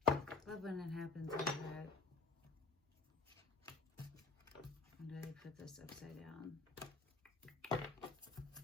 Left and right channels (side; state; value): right; quieter; 3.9 dB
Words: Love when it happens like that. When did I put this upside down? I